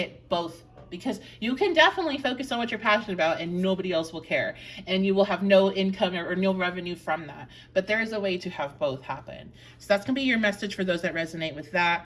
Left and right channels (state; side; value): identical; both; correlation 1.00